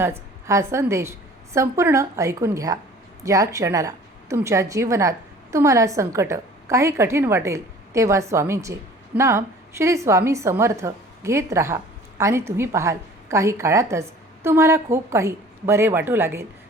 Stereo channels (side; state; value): both; normal; correlation 0.48